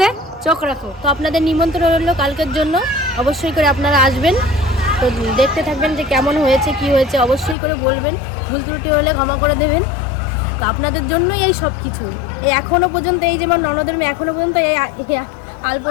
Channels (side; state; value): right; drops out; at 7.6 s